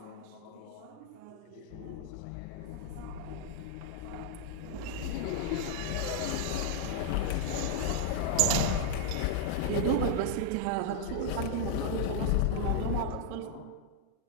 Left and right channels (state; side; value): different; both; correlation -0.01